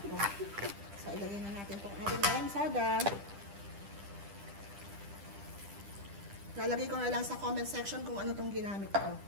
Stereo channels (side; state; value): left; late; 10 ms